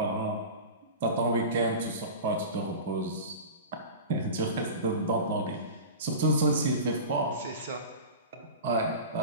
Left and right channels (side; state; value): both; inverted; correlation -0.32